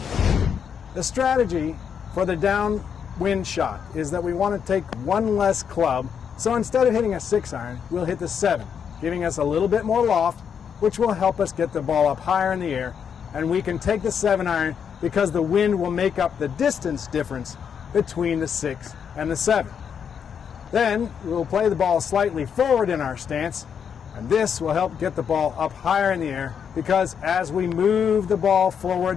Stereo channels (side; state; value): right; quieter; 7.4 dB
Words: The strategy for the downwind shot is that we want to take one less club. So instead of hitting a 6-iron, we'll hit the 7, giving us a little bit more loft, which will help us get the ball up higher in the air. And we can take the 7-iron because the wind will make up the distance difference between the 6 and the 7. Then we'll play the ball slightly forward in our stance, and this will help get the ball up higher in the air because as we move the ball